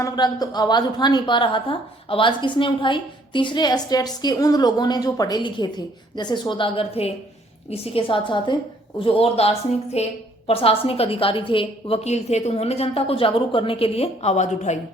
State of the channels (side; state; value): both; normal; correlation 0.63